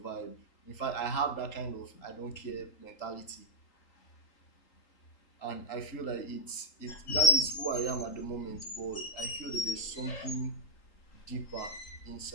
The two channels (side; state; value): right; late; 3.8 ms